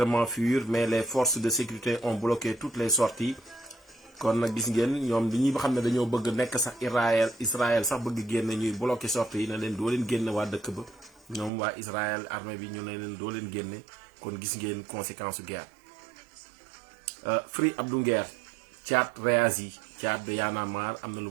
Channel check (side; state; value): left; drops out; at 11.5 s